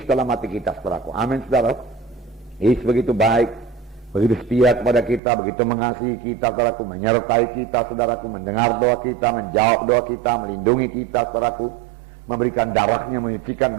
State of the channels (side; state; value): left; drops out; at 5.2 s